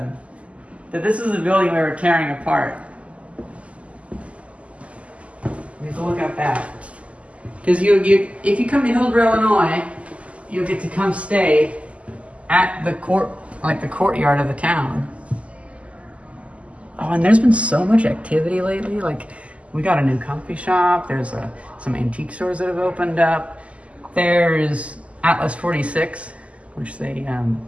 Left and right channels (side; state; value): left; late; 0.063 ms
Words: that this is the building we were tearing apart. We have to look at that. Because if you come to Hillsboro, Illinois, you'll get to come stay at the courtyard of the town. Oh, and there's been so much activity lately. Like, we got a new coffee shop. There's some antique stores that have opened up. There's Atlas 46, which they